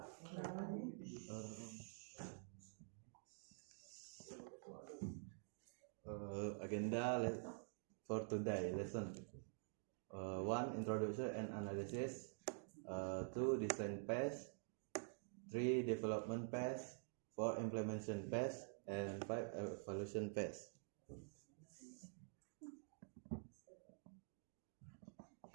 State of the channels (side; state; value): left; silent; digital silence